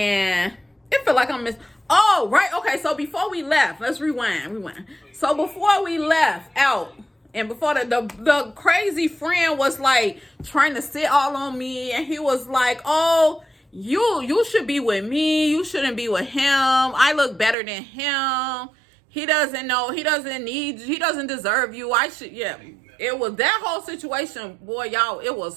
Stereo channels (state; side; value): drops out; left; at 17.6 s